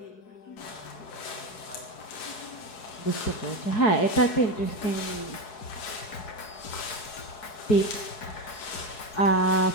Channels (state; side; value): late; right; 4.7 ms